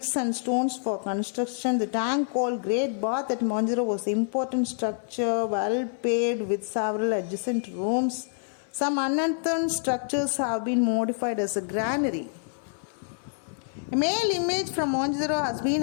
and stones for construction. The tank called Great Bath at Mohenjo-daro was an important structure, well paved with several adjacent rooms. Some unearthed structures have been modified as a granary. A male image from Mohenjo-daro has been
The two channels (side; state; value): right; silent; 58 dB below the other